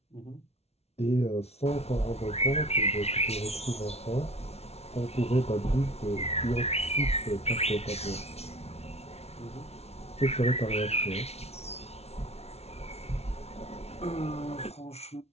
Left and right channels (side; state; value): right; late; 0.31 ms